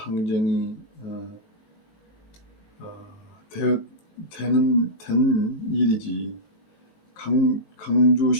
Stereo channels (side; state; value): right; late; 23 ms